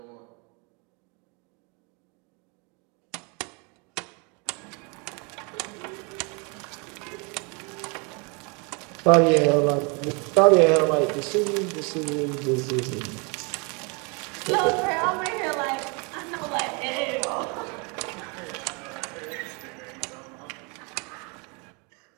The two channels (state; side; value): quieter; left; 32.4 dB